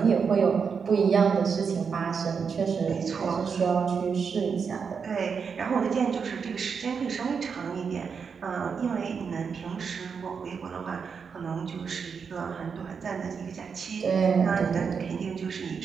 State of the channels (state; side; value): quieter; left; 6.0 dB